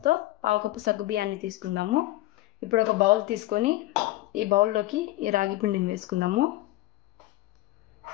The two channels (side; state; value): right; quieter; 17.1 dB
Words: పావు కప్పు సగ్గుబియ్యాన్ని తీసుకుందాము. ఇప్పుడు ఒక బౌల్ తీసుకొని ఈ బౌల్లోకి ఈ రాగి పిండిని వేసుకుందాము.